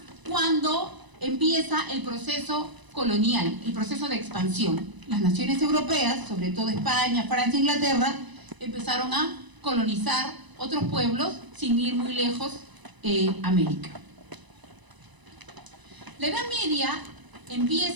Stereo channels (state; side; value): late; left; 1.0 ms